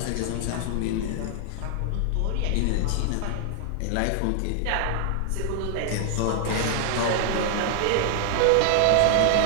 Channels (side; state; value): both; different; correlation 0.00